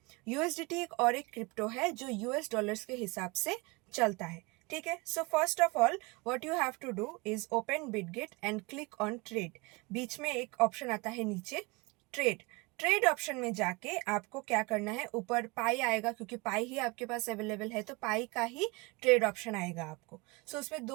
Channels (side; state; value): left; quieter; 26.0 dB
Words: USDT एक और एक crypto है जो US dollars के हिसाब से चलता है। ठीक है। So first of all what you have to do is open Bitget and click on trade. बीच में एक ऑप्शन आता है नीचे ट्रेड। ट्रेड ऑप्शन में जाके आपको क्या करना है, ऊपर पाई आएगा, क्योंकि पाई ही आपके पास अवेलेबल है तो पाई का ही ट्रेड ऑप्शन आएगा आपको। सो उसमें